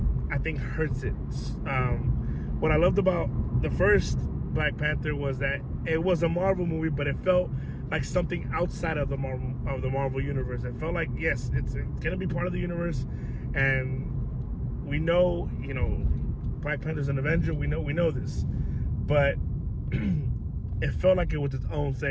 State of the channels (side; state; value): both; identical; correlation 1.00